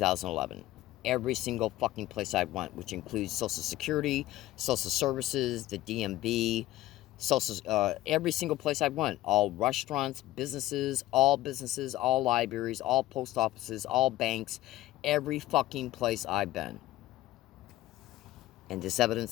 Every single fucking place I've went, which includes Social Security, Social Services, the DMV, every single place I've went. All restaurants, businesses, all libraries, all post offices, all banks, every fucking place I've been. And this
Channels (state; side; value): quieter; right; 16.0 dB